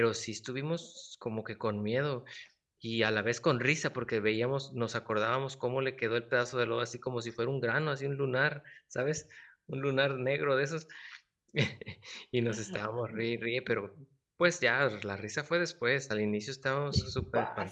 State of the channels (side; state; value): both; identical; correlation 1.00